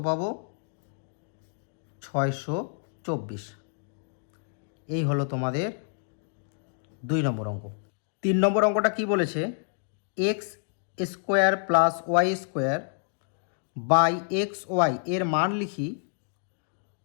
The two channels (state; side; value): silent; right; digital silence